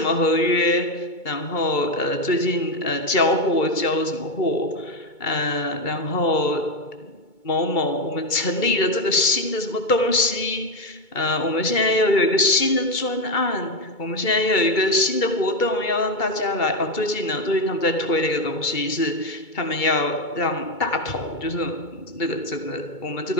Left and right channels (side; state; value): right; late; 2.2 ms